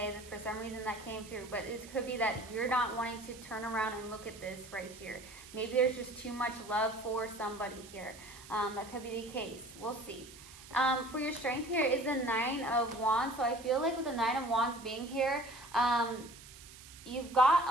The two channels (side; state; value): right; noise; hiss, 18 dB below the sound